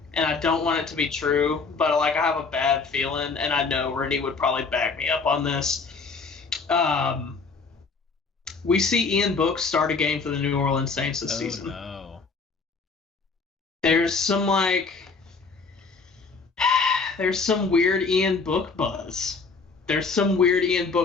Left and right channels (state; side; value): quieter; right; 4.6 dB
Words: and I don't want it to be true, but I have a bad feeling, and I know Rennie would probably back me up on this. We see Ian Book start a game for the New Orleans Saints this season. No. There's some weird Ian Book buzz. There's some weird Ian